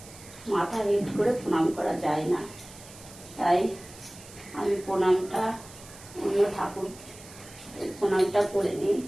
মাথা হেট করে প্রণাম করা যায় না। তাই আমি প্রণামটা অন্য ঠাকুর প্রণামটা করে নিই।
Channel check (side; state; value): right; noise; hiss, 19 dB below the sound